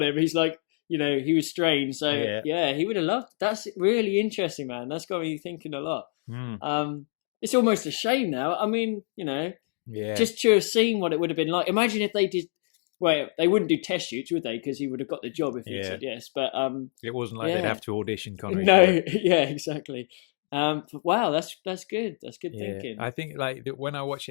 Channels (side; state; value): right; silent; digital silence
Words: him. He's like, he was strange. So yeah, he would have loved. That's really interesting, man. That's got me thinking a lot. It's almost a shame now. I mean, just to have seen what it would have been like. Imagine if they did. Well, they wouldn't do test shoots, would they? Because he would have got the job if he said yes. But it wasn't like they'd have to audition Connery. No, yeah, exactly. But wow, that's good. That's good thinking. I think like when I watch